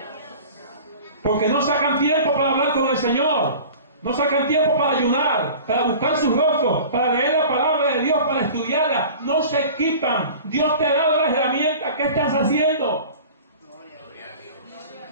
porque no sacan tiempo para hablar con el Señor, no sacan tiempo para ayunar, para buscar su rostro, para leer la palabra de Dios, para estudiarla. No se equipan. Dios te ha dado las herramientas. ¿Qué estás haciendo?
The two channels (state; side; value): inverted; both; correlation -0.41